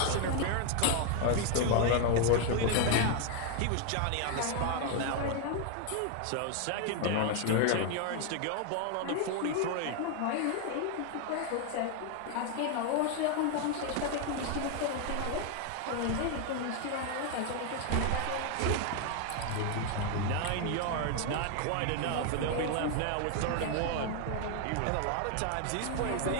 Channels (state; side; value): different; both; correlation 0.01